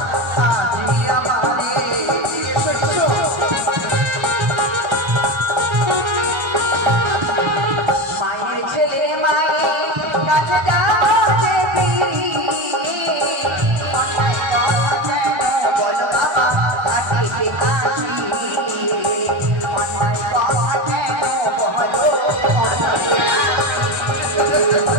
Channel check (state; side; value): late; left; 1.3 ms